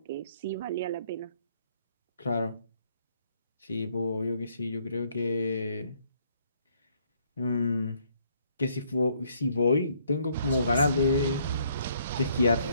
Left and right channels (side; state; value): both; inverted; correlation -0.67